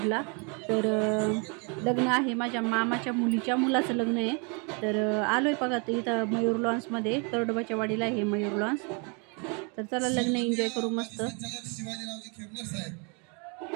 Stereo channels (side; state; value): left; quieter; 34.1 dB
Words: तर लग्न आहे माझ्या मामाच्या मुलीच्या मुलाचं लग्न आहे। तर आलोय बघा इथं मयूर लॉन्समध्ये तरडोबाच्या वाडीला आहे मयूर लॉन्स। तर चला लग्न एन्जॉय करू मस्त। शिवाजीरावजी खेमनर साहेब